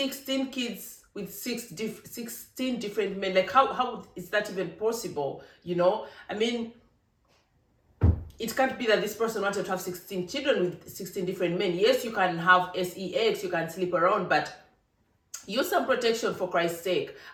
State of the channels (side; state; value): both; identical; correlation 1.00